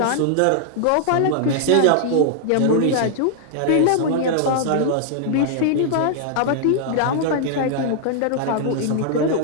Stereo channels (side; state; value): both; different; correlation -0.01